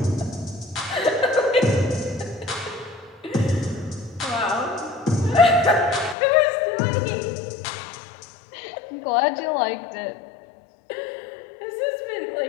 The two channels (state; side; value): drops out; right; at 6.2 s